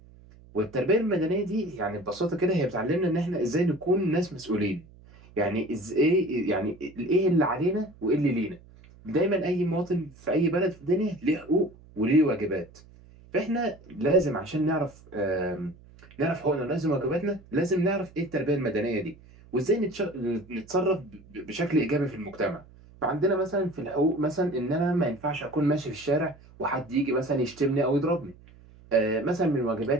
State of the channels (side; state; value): right; noise; hum, 23 dB below the sound